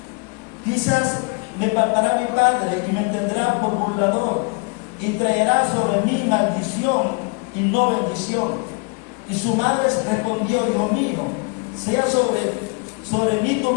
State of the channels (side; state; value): right; quieter; 32.9 dB